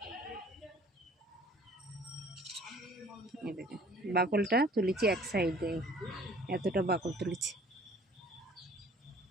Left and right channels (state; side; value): normal; both; correlation 0.53